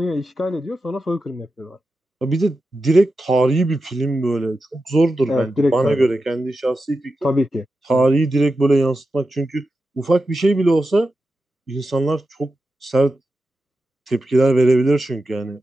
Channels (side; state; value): both; normal; correlation 0.91